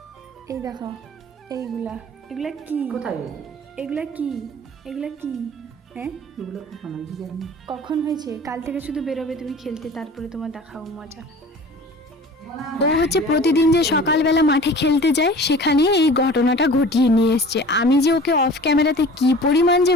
এই দেখো এইগুলা, এগুলা কি, কোথায় এগুলা কি, এগুলা কি, হ্যাঁ এগুলো কখন আমি জানি কখন হয়েছে? কাল থেকে শুধু বেরোবে তুমি খেলতে, তারপরে তোমার দেখাও মজা। ও হচ্ছে প্রতিদিন যে সকালবেলা মাঠে খেলতে যায়, সেখানে এই ঘটনাটা ঘটিয়ে নিয়ে এসছে। আমি যে ওকে অফ ক্যামেরাতে কি পরিমাণ যে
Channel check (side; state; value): both; normal; correlation 0.42